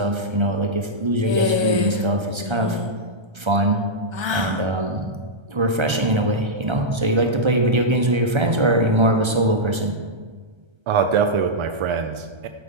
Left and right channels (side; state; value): left; late; 1.3 ms